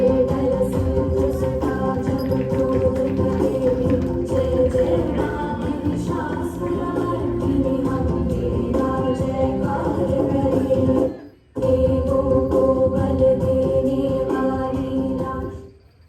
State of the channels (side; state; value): both; identical; correlation 1.00